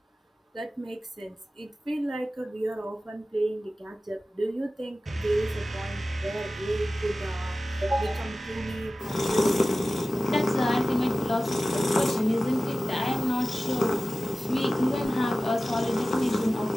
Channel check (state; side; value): normal; both; correlation 0.95